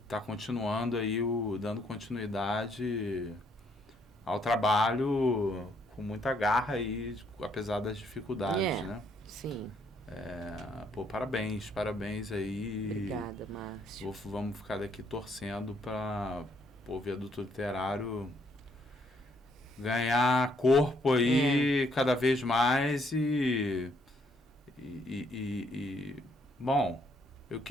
continuando aí, dando continuidade ao trabalho com muita garra aí, apesar das dificuldades, né? Sim. Parabéns aí. Obrigada, Márcio. Vamos ficar daqui torcendo para o Viaduto Literário ganhar corpo aí cada vez mais bom, eu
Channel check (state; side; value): normal; both; correlation 0.70